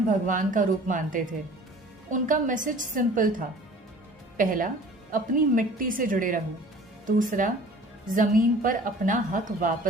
भगवान का रूप मानते थे। उनका मैसेज सिंपल था। पहला, अपनी मिट्टी से जुड़े रहो। दूसरा, जमीन पर अपना हक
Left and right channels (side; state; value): both; normal; correlation 0.47